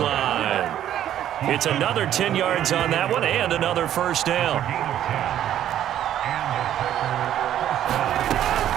It's another 10 yards on that one and another first down.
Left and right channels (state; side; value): quieter; left; 11.3 dB